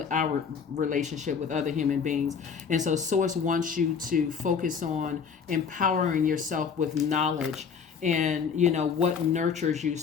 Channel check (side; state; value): right; quieter; 6.4 dB